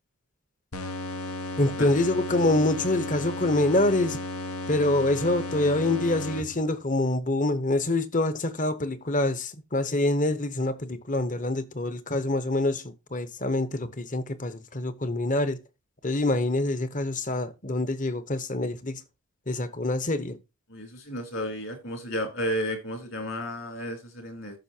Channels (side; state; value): both; normal; correlation 0.44